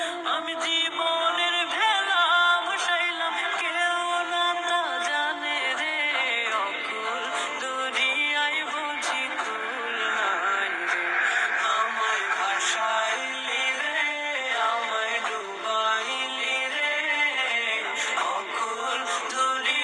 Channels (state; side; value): identical; both; correlation 1.00